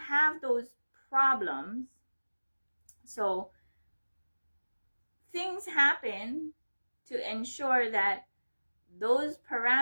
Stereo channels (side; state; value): both; inverted; correlation -1.00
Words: those problems. So things happen to ensure that those